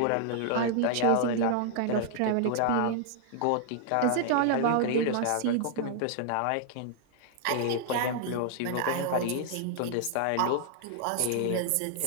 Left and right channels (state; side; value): different; both; correlation -0.01